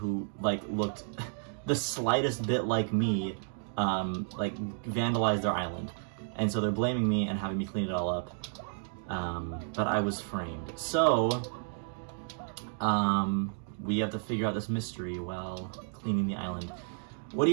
like, looked the slightest bit like me, like, vandalized their island. And so they're blaming me and having me clean it all up. But I was framed. So, we have to figure out this mystery while cleaning the island. What do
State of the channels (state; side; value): silent; left; digital silence